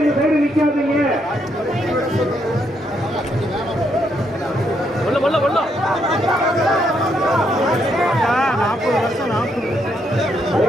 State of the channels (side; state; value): both; normal; correlation 0.76